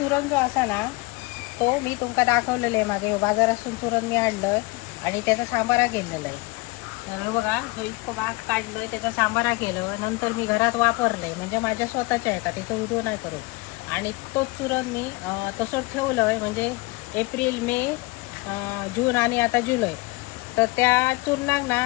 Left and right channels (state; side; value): quieter; right; 23.8 dB